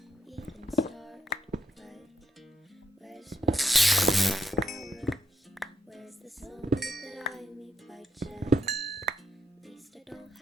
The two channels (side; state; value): both; normal; correlation 0.81